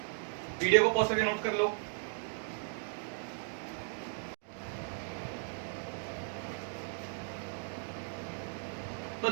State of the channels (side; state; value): left; silent; 54 dB below the other